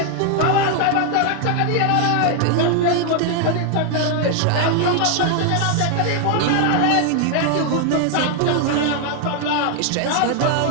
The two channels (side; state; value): both; different; correlation 0.00